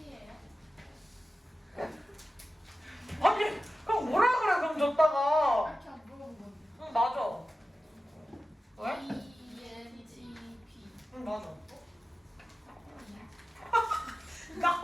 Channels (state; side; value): normal; both; correlation 0.94